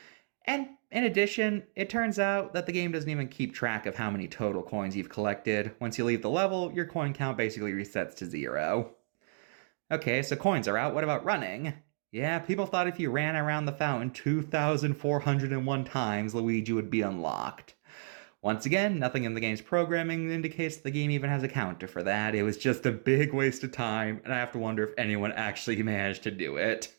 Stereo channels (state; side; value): silent; left; digital silence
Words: And in addition, it turns out that the game doesn't even keep track of how many total coins you've collected. Once you leave the level, your coin count basically resets to 0. Okay, so coins are out, what about running? Yeah, people thought if you ran around the fountain 2,401 times, Luigi would be unlocked. Once again, nothing in the game's programming indicates the game even has a counter for that. It was just a big waste of time, and I have to wonder if anyone actually managed to do it.